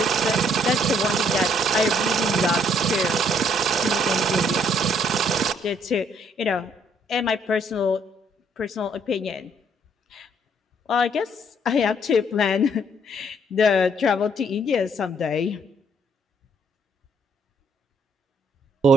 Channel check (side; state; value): both; normal; correlation 0.67